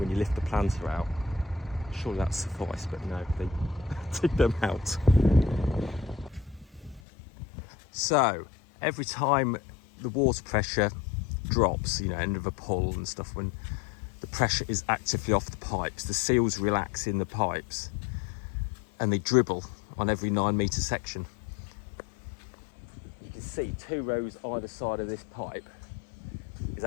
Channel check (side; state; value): right; drops out; at 7.0 s